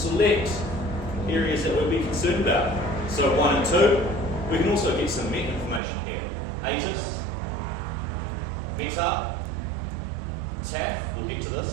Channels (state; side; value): drops out; left; at 5.8 s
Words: select areas that we'd be concerned about. So 1 and 2, we can also get some MET information here. ATIS, META, TAF, we'll get to